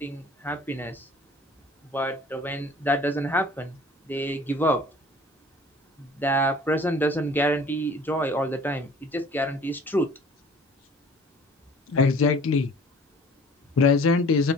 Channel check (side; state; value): both; normal; correlation 0.49